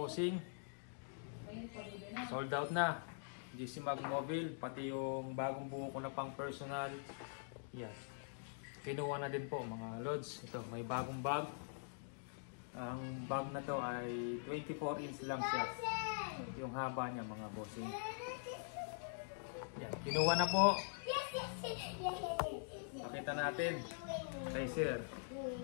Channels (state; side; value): silent; right; digital silence